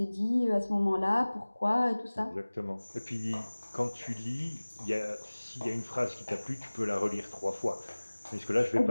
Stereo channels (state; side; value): inverted; both; correlation -1.00